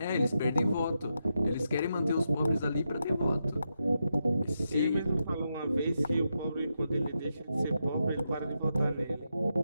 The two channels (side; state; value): both; inverted; correlation -0.85